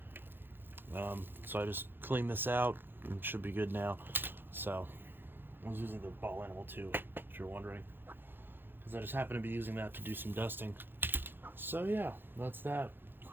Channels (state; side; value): late; left; 0.10 ms